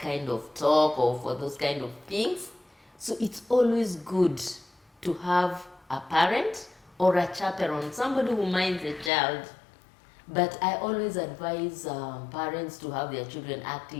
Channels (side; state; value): right; drops out; at 9.1 s